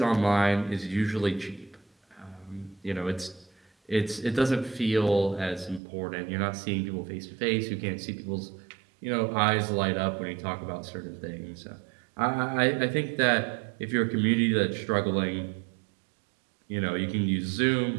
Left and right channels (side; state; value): left; drops out; at 5.8 s